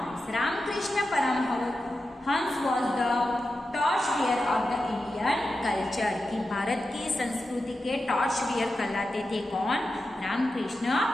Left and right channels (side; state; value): both; normal; correlation 0.91